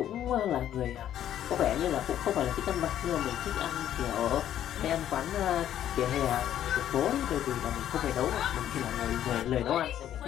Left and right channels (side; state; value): right; quieter; 11.1 dB